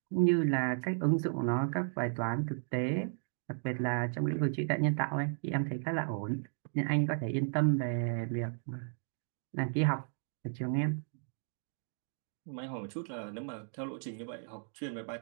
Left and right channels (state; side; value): silent; left; digital silence